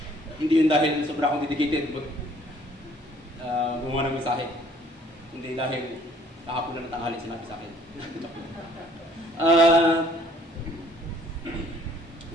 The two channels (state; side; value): normal; both; correlation 0.59